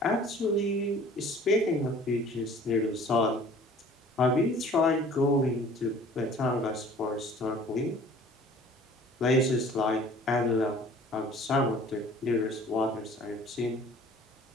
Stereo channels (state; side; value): normal; both; correlation 0.50